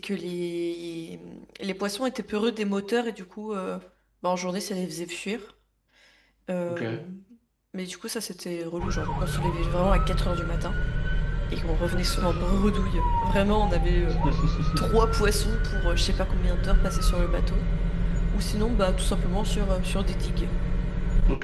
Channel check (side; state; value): both; identical; correlation 1.00